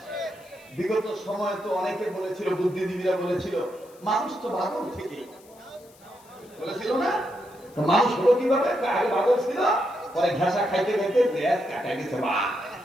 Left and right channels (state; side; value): noise; left; hiss, 27 dB below the sound